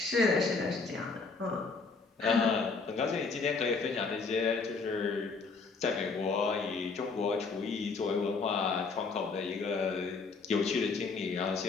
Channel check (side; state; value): right; quieter; 4.4 dB